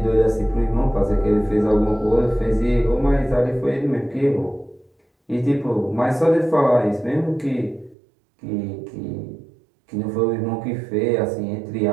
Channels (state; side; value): drops out; left; at 8.0 s